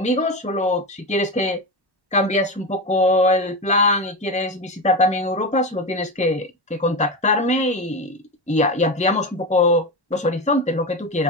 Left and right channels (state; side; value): normal; both; correlation 0.19